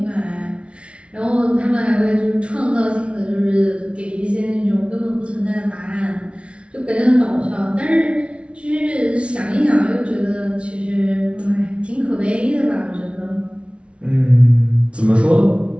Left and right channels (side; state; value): left; late; 0.060 ms